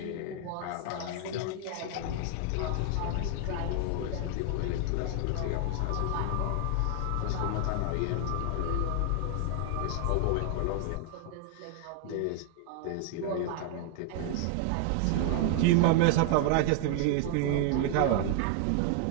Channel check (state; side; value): different; both; correlation 0.00